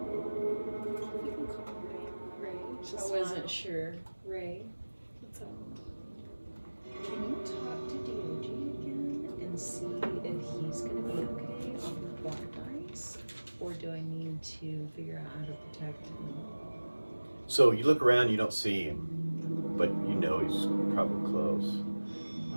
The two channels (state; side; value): inverted; both; correlation -1.00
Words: You can call him Ray. Ray. I wasn't sure. Ray, What's up? can you talk to DOG again and see if he's gonna be okay on the black ice, or do I need to figure out how to protect him? So you look around, you don't see him, but you know he's probably close.